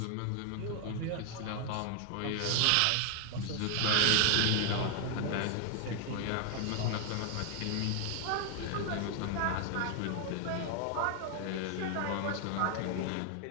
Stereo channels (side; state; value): both; different; correlation 0.00